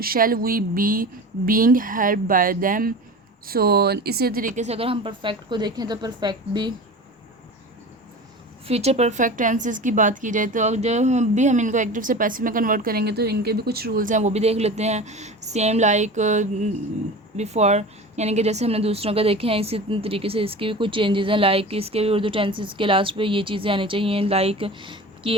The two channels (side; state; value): both; normal; correlation 0.34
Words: shall we be being helped by them. So इसी तरीके से अगर हम परफेक्ट को देखें तो परफेक्ट भी, फ्यूचर परफेक्ट टेंसेस की बात की जाए तो अब जब भी हम इनको एक्टिव से पैसिव में कन्वर्ट करेंगे तो इनके भी कुछ रूल्स हैं, वो भी देख लेते हैं। सेम लाइक बिफोर, यानी कि जैसे हमने दूसरों का देखे हैं इसी तरीके से इसके भी कुछ चेंजेस हैं, लाइक इसके भी उर्दू टेंसेस के लास्ट पे ये चीज़ें आनी चाहिए, लाइक